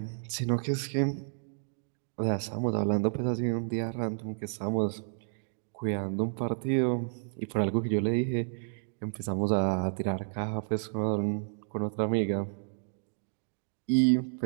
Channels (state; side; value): silent; left; digital silence